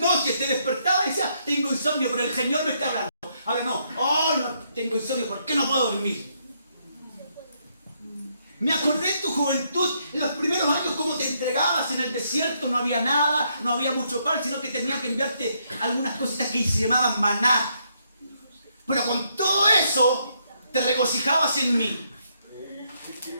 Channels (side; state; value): both; inverted; correlation -0.75